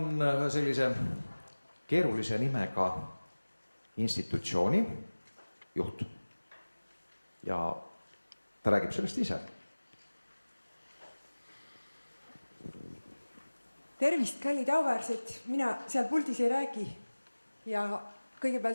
sellise keerulise nimega institutsiooni juht ja ta räägib sellest ise. Tervist, kallid auväärsed, mina seal puldis ei räägi ja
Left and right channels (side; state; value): both; inverted; correlation -1.00